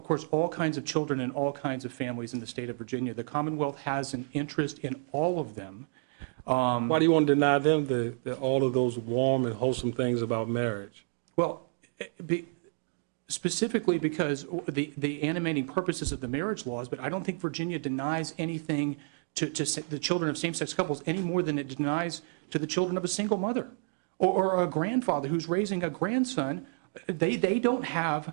course, all kinds of children and all kinds of families in the state of Virginia. The Commonwealth has an interest in all of them. Why do you want to deny them all of those warm and wholesome things about marriage? Well, specifically because the animating purposes of the marriage laws, but I don't think Virginia denies anything to the children of same-sex couples any more than it denies to the children of a single mother or a grandfather who's raising a grandson. They don't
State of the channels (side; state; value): left; silent; 58 dB below the other